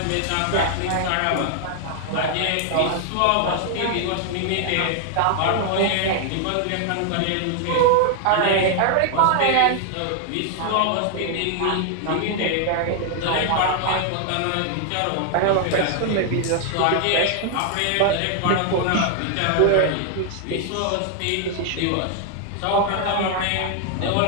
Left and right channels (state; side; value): different; both; correlation 0.00